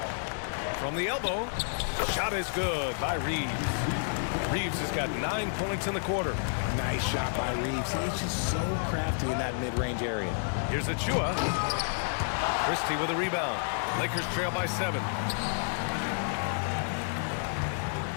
From the elbow, shot is good by Reeves. Reeves has got 9 points in the quarter. Nice shot by Reeves. He's just so crafty in that mid-range area. Here's Achua. Christie with a rebound. Lakers trail by 7.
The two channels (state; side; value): silent; right; digital silence